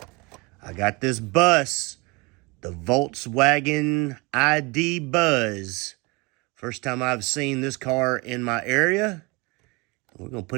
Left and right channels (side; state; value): left; quieter; 26.9 dB